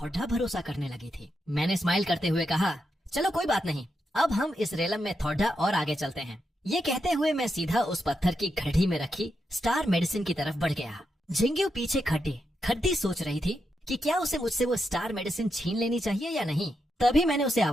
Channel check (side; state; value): both; normal; correlation 0.84